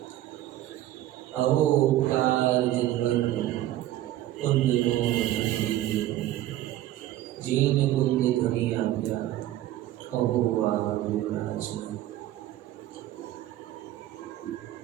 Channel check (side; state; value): left; quieter; 14.2 dB